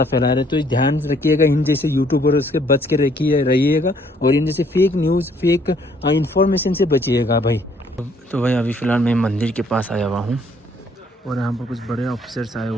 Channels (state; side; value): normal; both; correlation 0.64